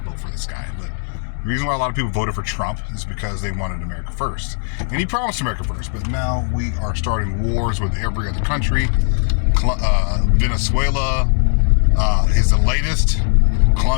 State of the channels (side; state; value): right; silent; 60 dB below the other